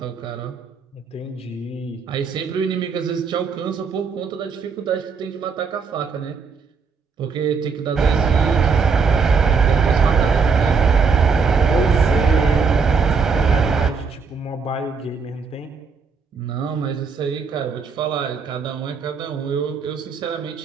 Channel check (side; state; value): left; quieter; 5.3 dB